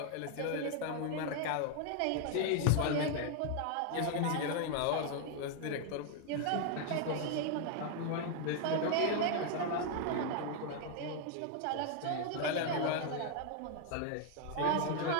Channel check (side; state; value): both; different; correlation 0.00